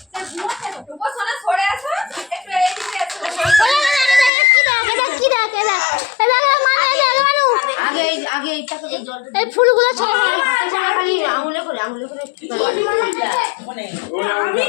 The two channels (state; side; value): drops out; right; at 4.3 s